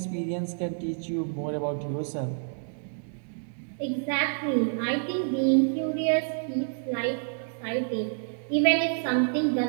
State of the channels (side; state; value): left; silent; digital silence